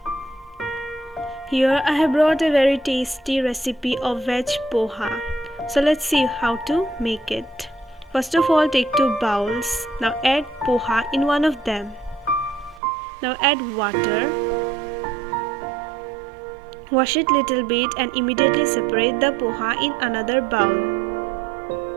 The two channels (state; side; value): drops out; left; at 12.8 s